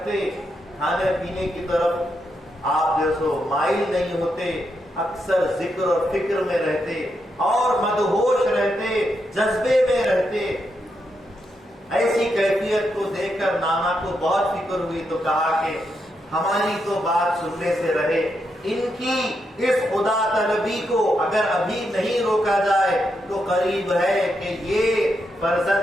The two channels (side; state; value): both; normal; correlation 0.82